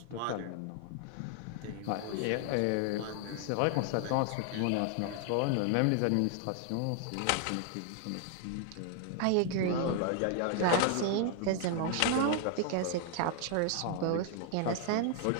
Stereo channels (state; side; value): different; both; correlation 0.00